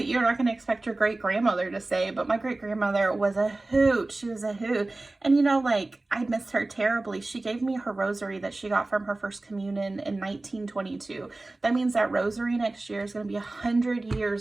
you're not going to expect your great grandmother to say, but my great grandmother was a hoot. She was a hoot. And you know, like, I miss her terribly. She gave me her rosary that she got from her first communion in 1922. That means that rosary next year is going to be 100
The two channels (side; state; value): left; quieter; 3.0 dB